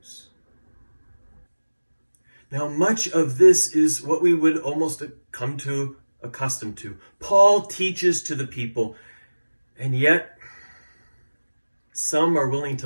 Now, much of this is what we would almost come to accustomed to. Paul teaches to the people, and yet some are willing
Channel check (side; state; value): both; inverted; correlation -1.00